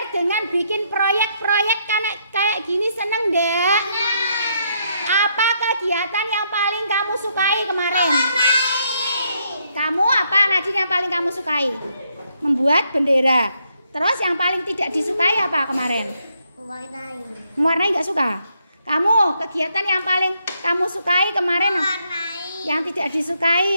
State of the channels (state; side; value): inverted; both; correlation -0.75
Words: dengan bikin proyek-proyek kayak gini, seneng ndak? Apa kegiatan yang paling kamu sukai kemarin? Kamu apa, Nadine, yang paling kamu sukai? Membuat bendera. Terus yang paling tidak disukai apa kemarin? Mewarnai. Mewarnai nggak suka? Kamu kegiatan yang paling kamu sukai kemarin? Mewarnai. Yang tidak